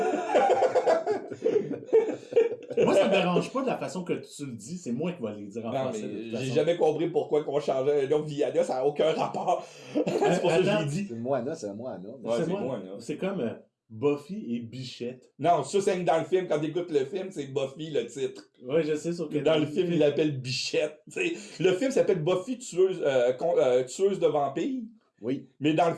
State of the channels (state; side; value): identical; both; correlation 1.00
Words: Moi, ça me dérange pas de la façon que tu le dis. C'est moi qui vais les dire en Non, français. mais de toute j'ai façon. jamais compris pourquoi qu'on changeait un nom Viana, ça n'a aucun rapport. C'est pour ça que je l'ai dit. C'est Moana, c'est Moana. Ouais, C'est c'est moi. Moana. C'est comme Buffy et Bichette. Non, ça, c'est dans le film. Quand tu écoutes le film, c'est Buffy le titre. Oui, je sais. Sauf que Dans le film, il l'appelle Bichette. T'sais, le film s'appelle Buffy tueuse de vampires, Oui. mais dans le